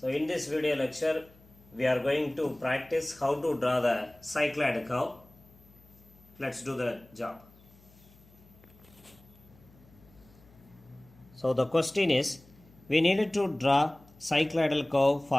in this video lecture we are going to practice how to draw the cycloid curve. Let's do the job. So the question is, we needed to draw cycloidal curve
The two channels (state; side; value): noise; left; hum, 26 dB below the sound